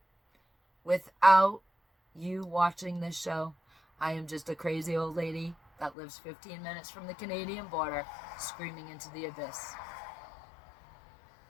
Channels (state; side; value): drops out; right; at 6.0 s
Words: without you watching this show, I am just a crazy old lady that lives 15 minutes from the Canadian border, screaming into the abyss.